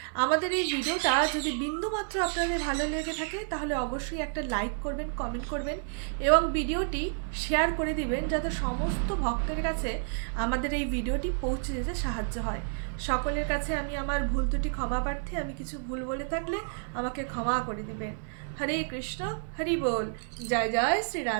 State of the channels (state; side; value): silent; left; 58 dB below the other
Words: আমাদের এই ভিডিওটা যদি বিন্দুমাত্র আপনাদের ভালো লেগে থাকে তাহলে অবশ্যই একটা লাইক করবেন, কমেন্ট করবেন এবং ভিডিওটি শেয়ার করে দিবেন, যাতে সমস্ত ভক্তের কাছে আমাদের এই ভিডিওটি পৌঁছে যেতে সাহায্য হয়। সকলের কাছে আমি আমার ভুল ত্রুটি ক্ষমা প্রার্থী। আমি কিছু ভুল বলে থাকলে আমাকে ক্ষমা করে দিবেন। হরে কৃষ্ণ, হরি বল। জয় জয় শ্রী